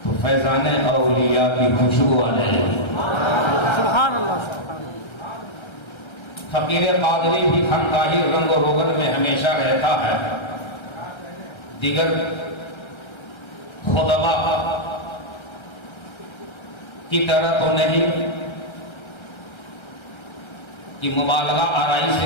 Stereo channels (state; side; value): late; right; 1.3 ms